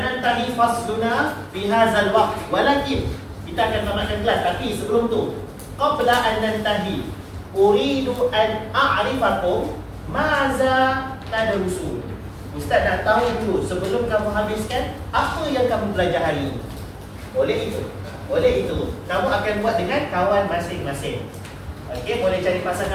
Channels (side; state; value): both; identical; correlation 1.00